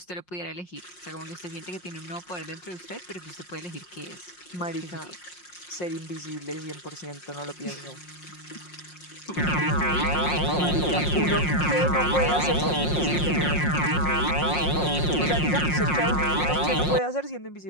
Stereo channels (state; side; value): late; right; 5.6 ms